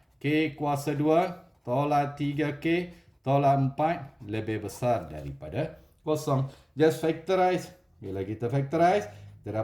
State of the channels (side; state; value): both; identical; correlation 1.00